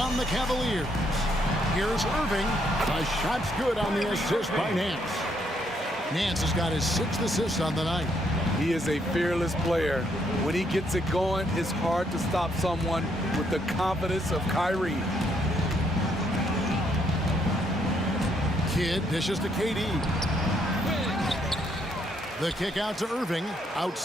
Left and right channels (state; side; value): normal; both; correlation 0.73